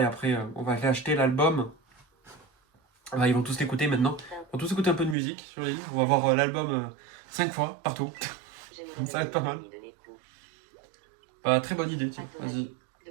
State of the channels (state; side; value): drops out; left; at 5.2 s